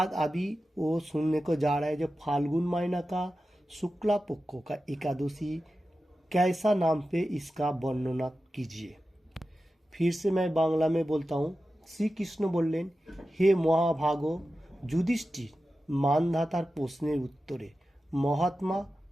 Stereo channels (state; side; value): normal; both; correlation 0.93